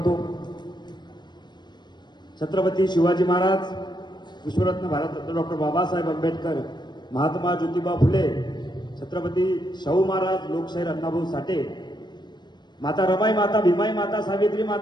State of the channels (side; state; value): right; late; 0.21 ms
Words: छत्रपती शिवाजी महाराज, विश्वरत्न भारतरत्न डॉक्टर बाबासाहेब आंबेडकर, महात्मा ज्योतिबा फुले, छत्रपती शाहू महाराज, लोकशाहीर अण्णाभाऊ साठे, माता रमाई माता, भीमाई माता, सावित्री